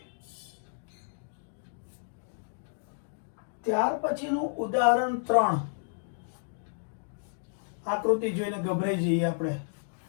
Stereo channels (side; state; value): right; silent; digital silence